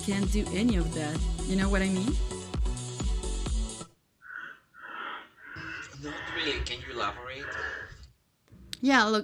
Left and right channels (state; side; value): identical; both; correlation 1.00